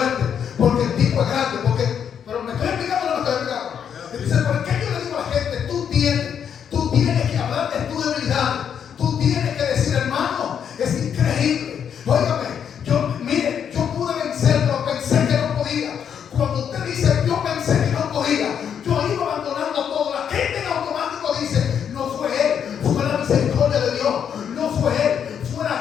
porque el tipo es grande, pero me estoy explicando o no me estoy explicando. Entonces, ¿por qué yo le digo a la gente: tú tienes que hablar de tu debilidad? Tú tienes que decir: hermano, es increíble. Óigame, yo pude vencer, pero pensé que no podía. Cuando usted dice: yo pensé que no podía, yo iba abandonando todo, la gente en automático dice: no fue él, fue la misericordia de Dios, no fue él, fue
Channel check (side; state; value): right; quieter; 8.1 dB